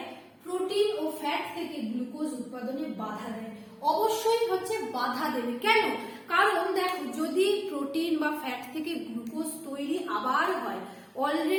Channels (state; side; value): identical; both; correlation 1.00